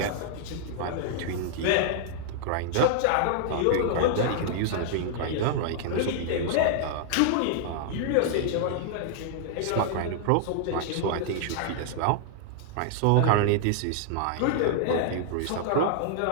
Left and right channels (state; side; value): different; both; correlation -0.01